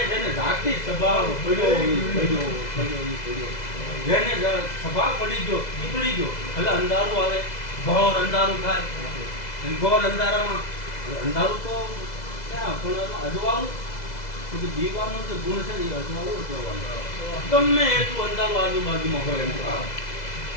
જેને જાગતી સ્વભાવ પડ્યો જેને સ્વભાવ પડી ગયો પડી ગયો. એટલે અંધારું આવે, ઘોર અંધારું થાય. ઘોર અંધારામાં અંધારું તો ક્યાં પણ અજવાળું દીવાનો જે ગુણ છે એ અજવાળું કરવાનું. ગમે એટલું અંધારું આજુબાજુમાં હોય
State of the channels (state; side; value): late; right; 2.0 ms